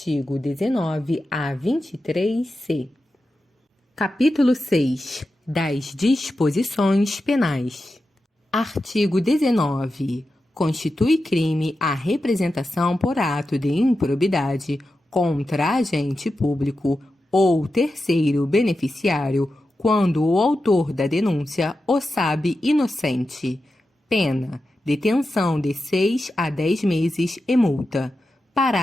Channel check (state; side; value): normal; both; correlation 0.91